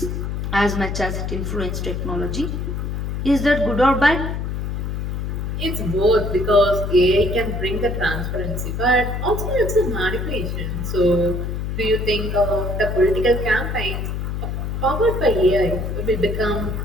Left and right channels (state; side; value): noise; left; hum, 3 dB below the sound